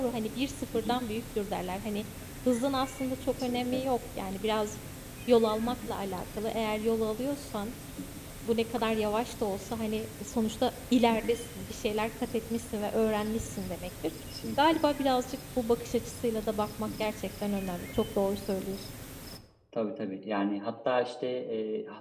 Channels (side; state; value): both; identical; correlation 1.00